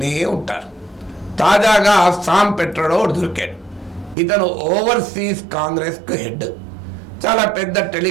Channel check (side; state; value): left; drops out; at 4.2 s